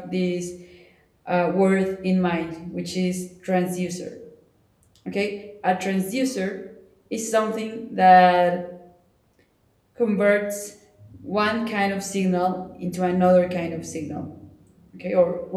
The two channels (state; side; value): identical; both; correlation 1.00